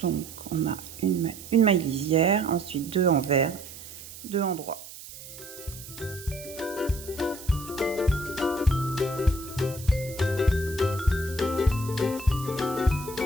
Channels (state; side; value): noise; right; hiss, 14 dB below the sound